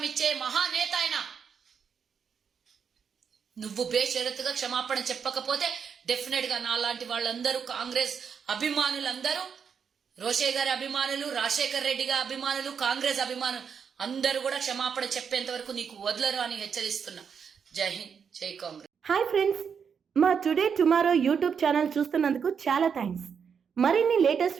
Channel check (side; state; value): left; quieter; 6.8 dB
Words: ఇచ్చే మహానేత ఆయన. నువ్వు బేషరతుగా క్షమాపణ చెప్పకపోతే డెఫినెట్ గా నాలాంటి వాళ్ళందరూ, కాంగ్రెస్ అభిమానులందరూ, రోషయ్య గారి అభిమానులు, రాజశేఖర్ రెడ్డి గారి అభిమానులు, కాంగ్రెస్ అభిమానులు అందరూ కూడా క్షమాపణ చెప్పేంత వరకు నీకు వదలరు అని హెచ్చరిస్తున్నా. జై హింద్, జై కాంగ్రెస్. హాయ్ ఫ్రెండ్స్, మా టుడే టుమారో యూట్యూబ్ ఛానల్ చూస్తున్నందుకు చాలా థ్యాంక్స్. మరిన్ని లేటెస్ట్